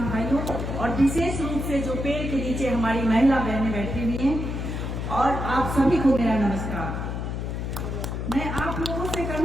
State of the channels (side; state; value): left; noise; hum, 4 dB below the sound